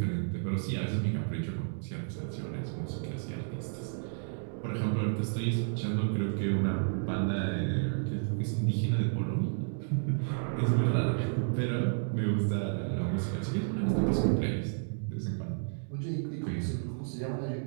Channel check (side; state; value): left; silent; digital silence